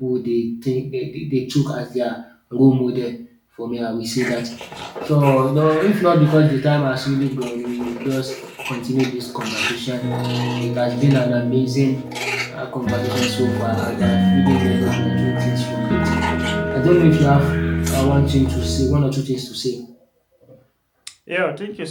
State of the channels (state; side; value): identical; both; correlation 1.00